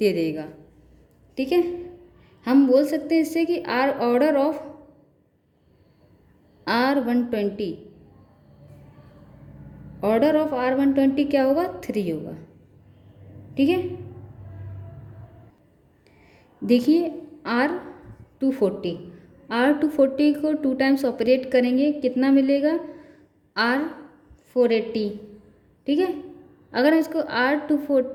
देगा, ठीक है। हम बोल सकते हैं इससे कि ऑर्डर ऑफ R120 क्या होगा, 3 होगा, ठीक है। देखिए R240 को 2 टाइम्स ऑपरेट करेंगे, कितना मिलेगा, R480, ठीक है। अगर हम इसको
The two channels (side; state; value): both; identical; correlation 1.00